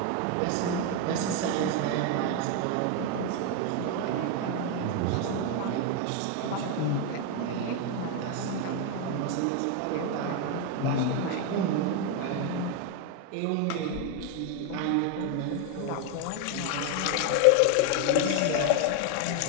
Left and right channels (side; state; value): both; different; correlation 0.01